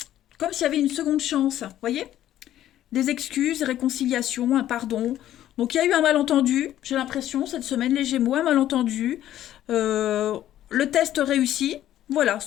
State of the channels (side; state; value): right; quieter; 12.5 dB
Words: comme s'il y avait une seconde chance, vous voyez. Des excuses, réconciliation, un pardon. Donc il y a eu un malentendu, j'ai l'impression, cette semaine, les Gémeaux, un malentendu. Le test réussi, voilà,